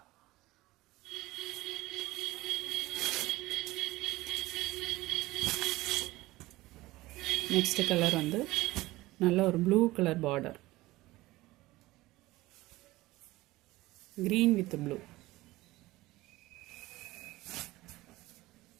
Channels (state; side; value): quieter; left; 18.7 dB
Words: நெக்ஸ்ட் கலர் வந்து நல்ல ஒரு blue colour border, green with blue.